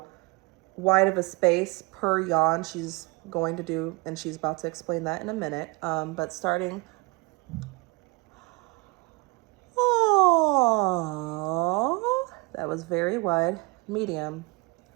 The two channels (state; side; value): quieter; left; 26.1 dB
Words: wide of a space per yawn she's going to do, and she's about to explain that in a minute. But starting, oh, that was very wide. Medium.